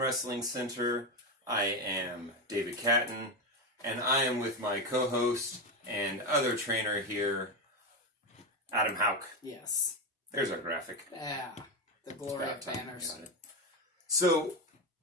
Center. I am David Cattin, and I am with my co-host and other trainer here, Adam Houck. Yes. There's our graphic. Yeah. The glory of banners. So,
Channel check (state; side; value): normal; both; correlation 0.13